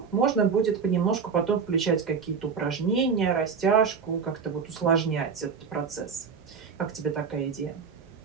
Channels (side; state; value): left; quieter; 6.0 dB